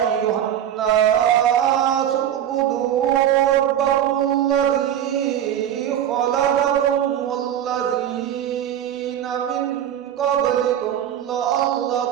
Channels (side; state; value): left; quieter; 10.4 dB